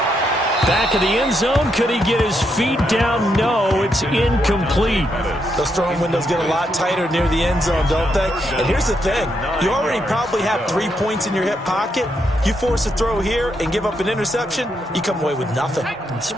Back of the end zone. Could he get his feet down? No, it's incomplete. Those throwing windows get a lot tighter near the end zone, don't they? And here's the thing. You already probably have 3 points in your hip pocket. You force a throw here and give up an interception, you come away with nothing.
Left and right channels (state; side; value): normal; both; correlation 0.79